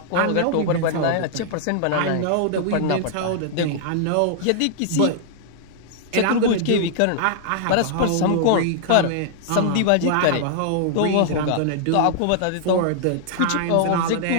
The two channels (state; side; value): different; both; correlation -0.01